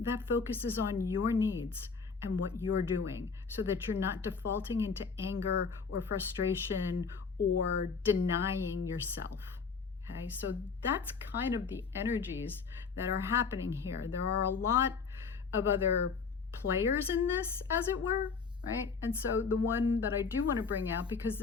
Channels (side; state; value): right; quieter; 5.3 dB